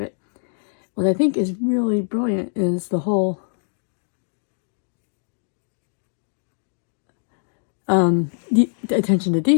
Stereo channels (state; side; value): silent; right; digital silence